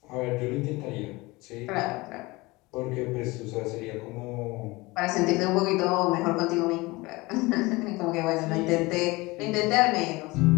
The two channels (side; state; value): right; quieter; 22.4 dB